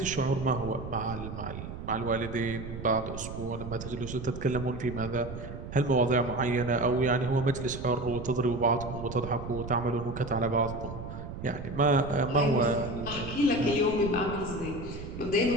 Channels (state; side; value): noise; right; rumble, 9 dB below the sound